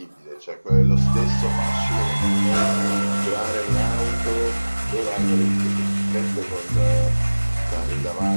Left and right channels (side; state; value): both; inverted; correlation -1.00